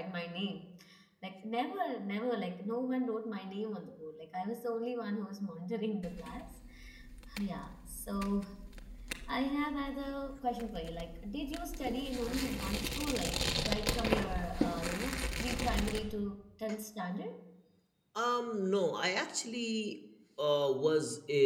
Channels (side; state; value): both; identical; correlation 1.00